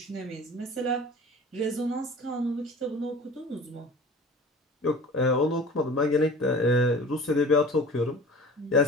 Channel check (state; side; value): normal; both; correlation 0.41